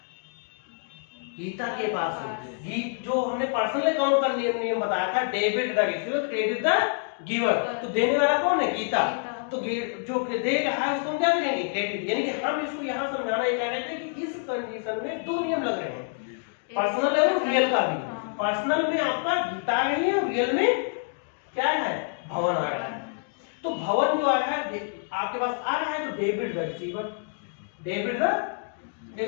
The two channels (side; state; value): right; silent; 59 dB below the other